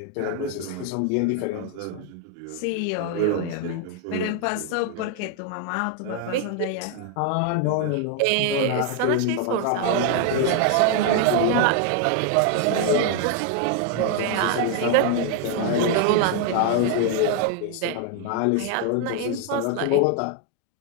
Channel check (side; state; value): both; different; correlation 0.00